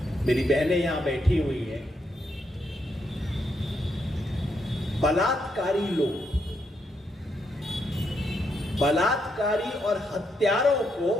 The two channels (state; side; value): normal; both; correlation 0.78